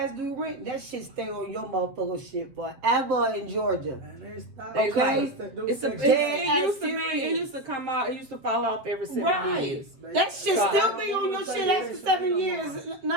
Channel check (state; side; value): late; left; 7.4 ms